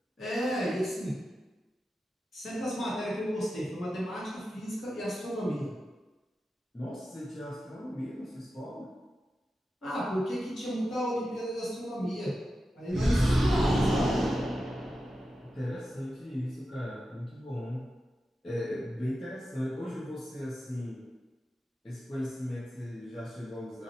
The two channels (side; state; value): both; normal; correlation 0.91